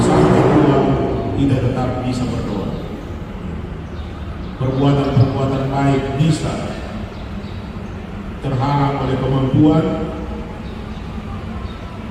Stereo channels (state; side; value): identical; both; correlation 1.00